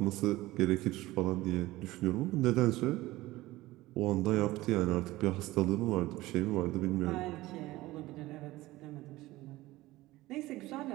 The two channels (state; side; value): quieter; left; 18.2 dB